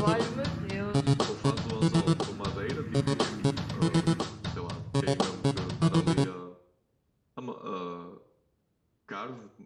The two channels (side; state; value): both; identical; correlation 1.00